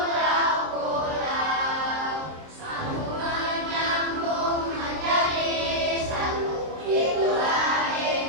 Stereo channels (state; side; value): late; left; 26 ms